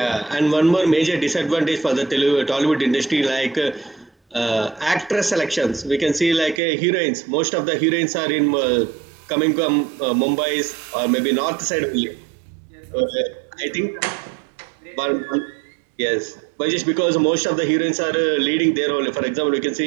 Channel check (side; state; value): left; drops out; at 6.6 s